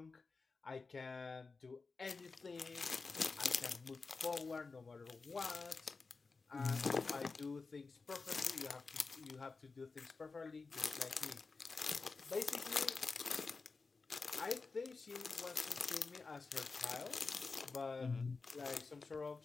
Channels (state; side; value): quieter; right; 4.3 dB